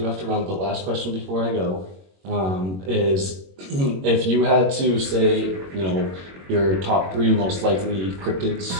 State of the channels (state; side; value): late; left; 21 ms